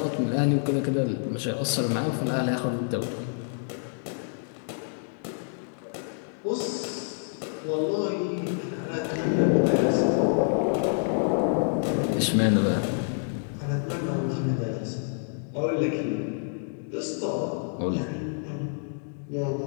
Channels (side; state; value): right; silent; digital silence